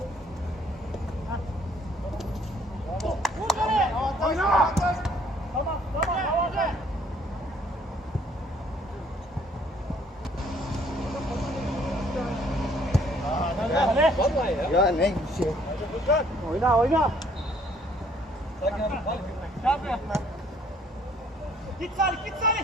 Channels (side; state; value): both; normal; correlation 0.62